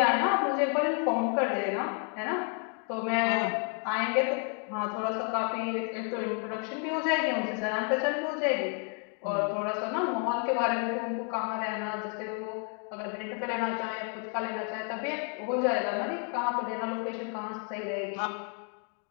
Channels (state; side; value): quieter; right; 39.6 dB